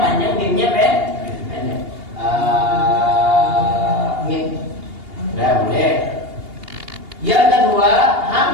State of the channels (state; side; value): late; left; 2.8 ms